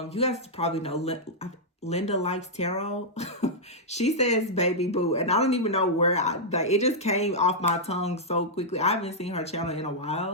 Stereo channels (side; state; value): both; normal; correlation -0.07